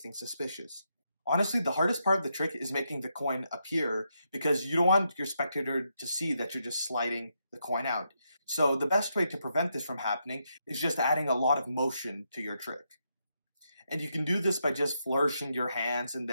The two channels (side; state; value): both; inverted; correlation -0.81